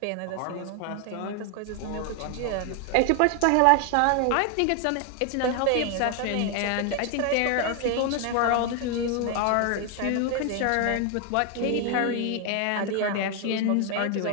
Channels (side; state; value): both; different; correlation 0.01